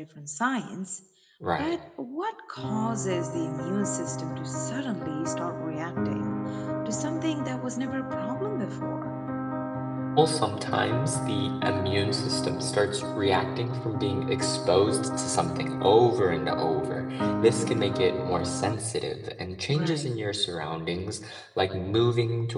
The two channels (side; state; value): both; identical; correlation 1.00